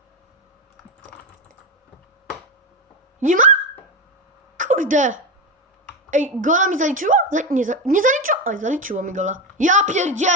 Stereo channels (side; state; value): both; normal; correlation 0.14